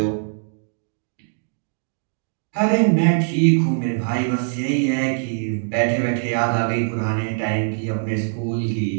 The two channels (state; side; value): silent; left; digital silence